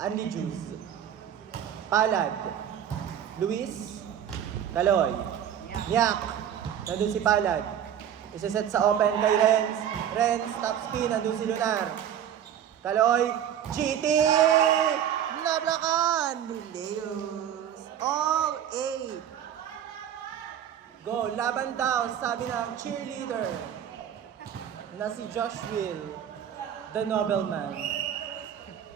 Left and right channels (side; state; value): left; quieter; 9.7 dB